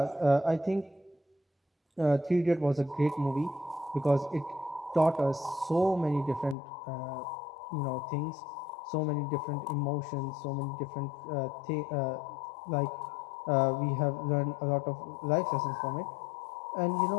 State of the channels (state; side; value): drops out; right; at 6.6 s